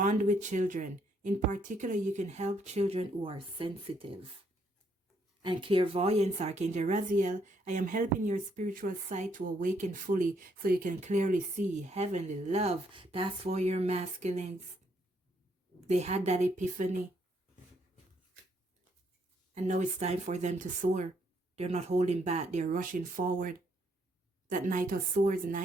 with children. In particular, you can help children who are sensitive. And clairvoyance, Archangel Raziel. I am helping your spiritual sight to awaken fully so you can clearly see heavenly love. That's for your masculines. They had that epiphany. And now it's time for them to soar. They're not holding back. They're rushing forward. That Knight of Swords,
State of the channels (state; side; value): normal; both; correlation 0.72